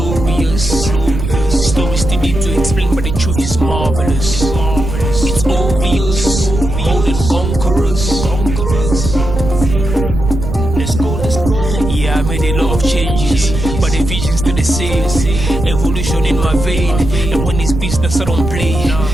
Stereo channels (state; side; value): noise; right; rumble, 5 dB below the sound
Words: oyo ezaki normal ya normal ekufi à cause ya bon à départ ya entrée ya mai ya onde yaka ya onde mutibomi balabala oyo c'est pour cela balabala commis rivière automatique et ça la fait inondation so mbule beti nous sommes obligés de dire tout le monde ya balabala timuki boy